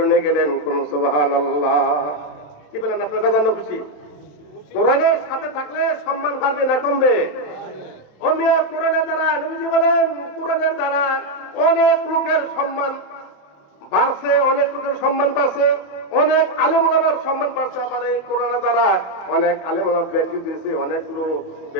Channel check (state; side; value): late; right; 27 ms